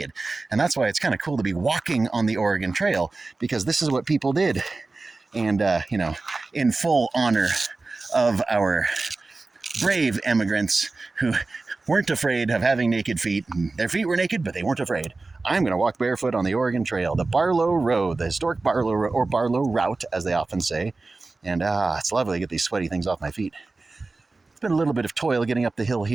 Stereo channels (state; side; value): quieter; left; 3.5 dB